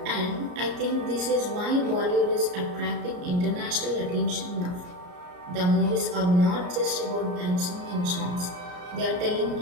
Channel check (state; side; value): late; left; 34 ms